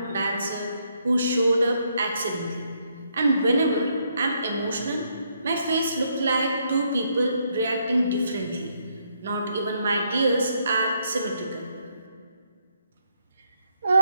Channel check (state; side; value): inverted; both; correlation -0.75